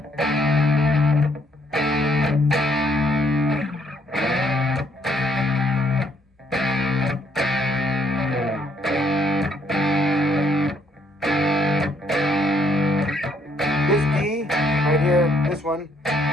D right here, this one,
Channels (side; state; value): both; normal; correlation 0.69